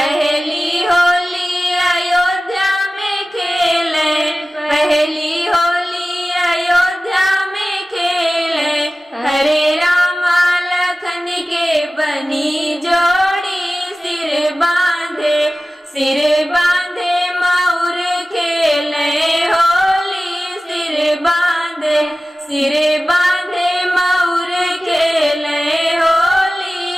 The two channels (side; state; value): both; normal; correlation 0.96